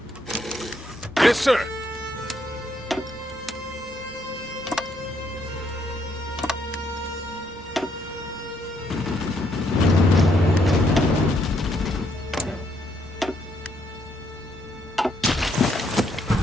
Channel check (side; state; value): both; normal; correlation 0.73